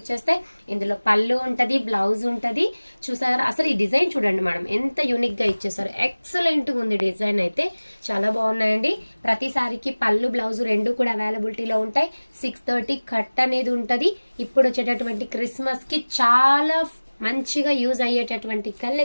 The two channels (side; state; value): both; inverted; correlation -1.00